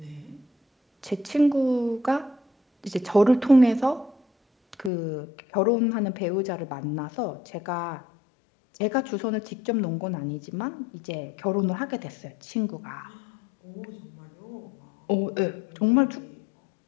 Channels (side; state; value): right; drops out; at 4.9 s